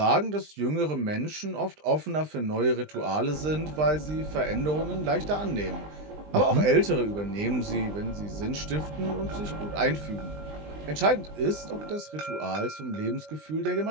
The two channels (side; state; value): left; late; 20 ms